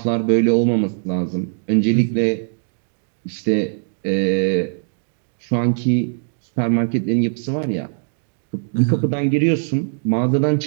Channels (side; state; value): left; silent; digital silence